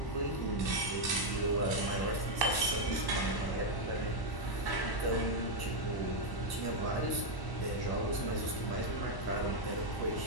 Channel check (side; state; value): right; late; 1.1 ms